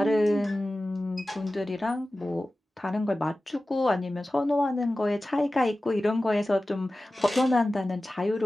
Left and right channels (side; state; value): both; normal; correlation 0.96